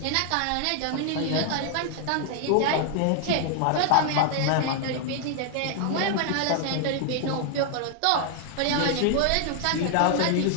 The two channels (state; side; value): different; both; correlation 0.00